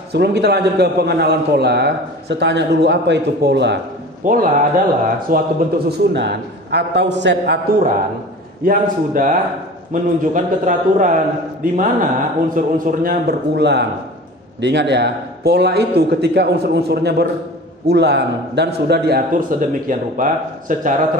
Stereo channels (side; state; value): both; normal; correlation 0.38